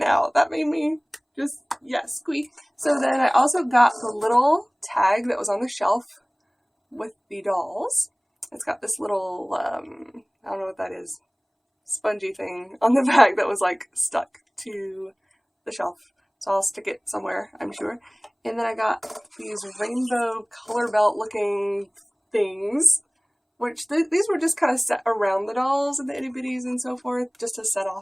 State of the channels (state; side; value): identical; both; correlation 1.00